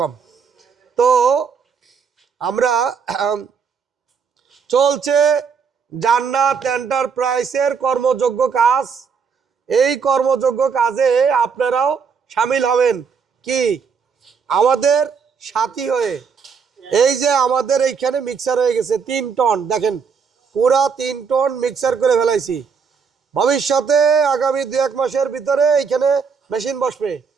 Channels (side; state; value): left; quieter; 6.0 dB